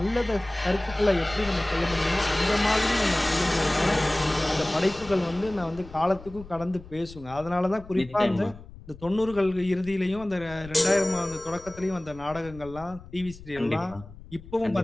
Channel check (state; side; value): noise; left; rumble, 18 dB below the sound